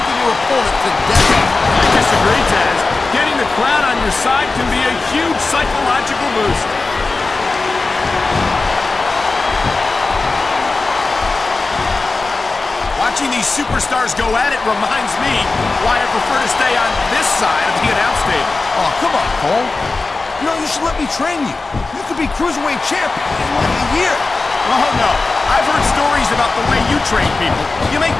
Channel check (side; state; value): right; quieter; 3.7 dB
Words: your opponent to death. I disagree, Taz. Getting the crowd on your side can be a huge psychological boost. Watching these superstars go at it reminds me why I prefer to stay on this side of the announce table. Oh, come on, Cole. You know, you should let me train you. You could be Cruiserweight champion in like a year. Oh, no. I've heard stories about the way you train people. You make